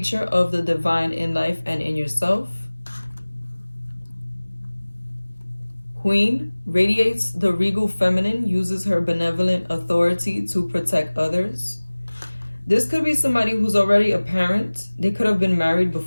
of the divine in life and in yourself. Queen, radiates the regal feminine, uses her benevolent authority to protect others. This could be somebody who's already a parent. They could have been married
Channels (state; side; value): inverted; both; correlation -1.00